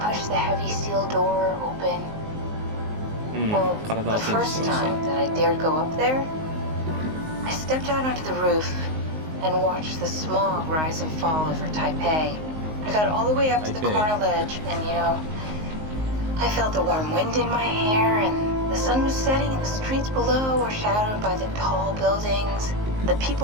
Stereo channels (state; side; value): late; left; 19 ms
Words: the heavy steel door open. うん、 Well, 体 the チェンジし first ました。 time that I dared go up there, I stepped out onto the roof and watched the smog rise and fall over Taipei. I got all the way up to the Taipei. corner ledge and, I felt the warm wind in my hair and the sun was setting and the streets below were shadowed by the tall buildings. The